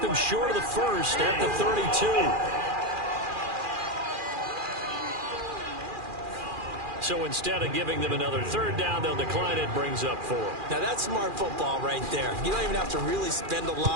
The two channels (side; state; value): left; late; 2.4 ms